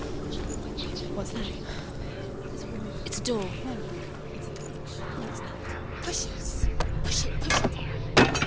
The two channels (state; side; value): identical; both; correlation 1.00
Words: What's that? It's a door. Push it. Push it, push it.